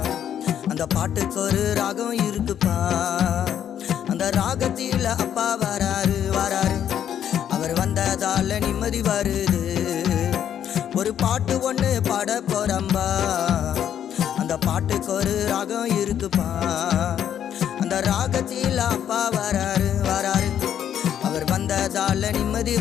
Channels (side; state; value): right; quieter; 9.6 dB